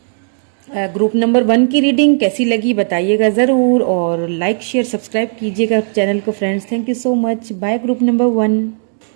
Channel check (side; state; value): left; silent; digital silence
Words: ग्रुप नंबर 1 की रीडिंग। कैसी लगी बताइएगा ज़रूर, और लाइक शेयर सब्सक्राइब कीजिएगा चैनल को friends. Thank you so much. Bye group number 1।